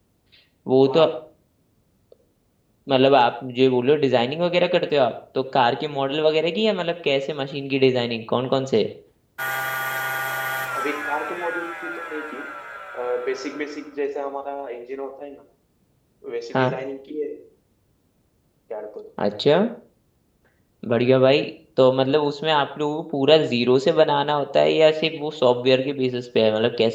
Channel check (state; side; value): identical; both; correlation 1.00